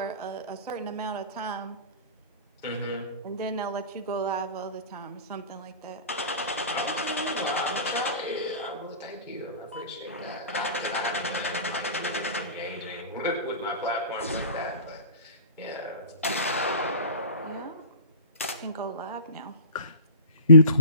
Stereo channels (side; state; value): both; inverted; correlation -0.40